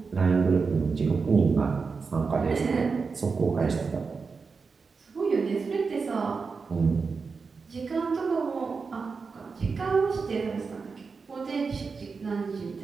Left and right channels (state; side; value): quieter; left; 4.9 dB